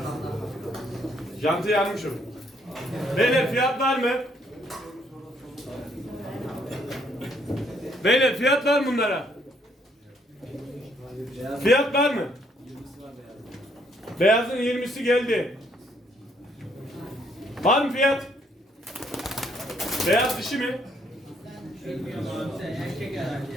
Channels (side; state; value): both; normal; correlation 0.69